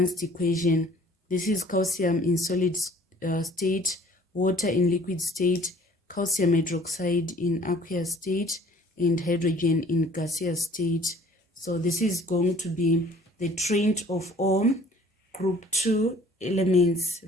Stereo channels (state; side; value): normal; both; correlation 0.53